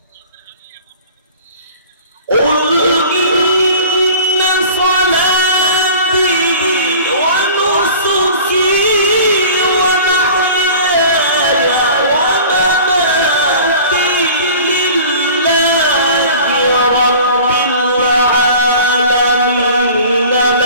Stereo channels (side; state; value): both; inverted; correlation -0.43